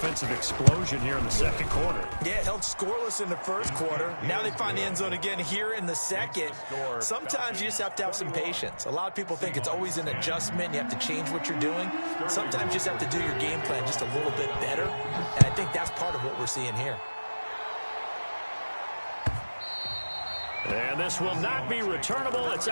explosion here in the second quarter. Yeah, held scoreless in the first quarter. Now they find the end zone again here in the second. Sometimes you just have to have some patience. A lot of people think it's always an adjustment. You have to change what you're doing. Sometimes you just have to do your game plan just a little bit better. And I think that's part of what we're seeing here. And this will not be returnable. It's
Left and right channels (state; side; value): inverted; both; correlation -1.00